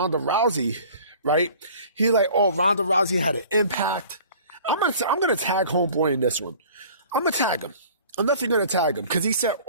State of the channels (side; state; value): both; inverted; correlation -0.47